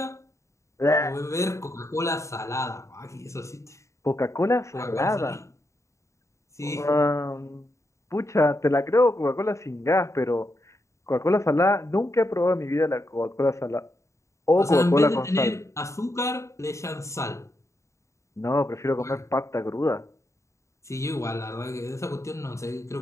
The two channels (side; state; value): right; late; 0.14 ms